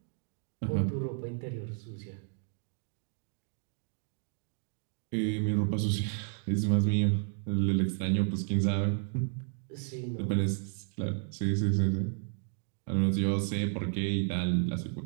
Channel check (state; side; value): silent; left; 56 dB below the other